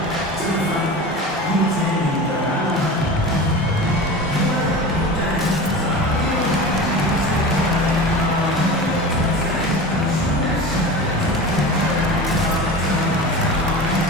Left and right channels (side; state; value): both; normal; correlation 0.31